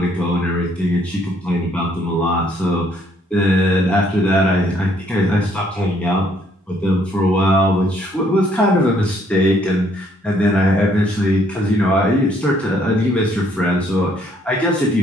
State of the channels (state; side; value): normal; both; correlation 0.66